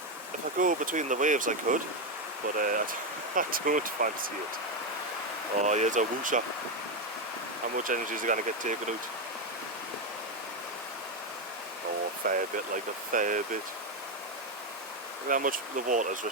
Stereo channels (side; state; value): both; normal; correlation 0.07